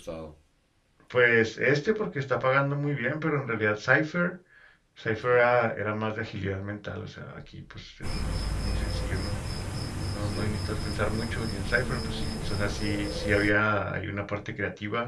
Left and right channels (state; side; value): identical; both; correlation 1.00